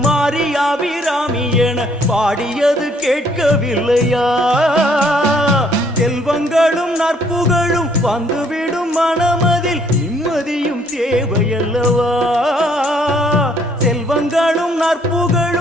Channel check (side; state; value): both; normal; correlation 0.65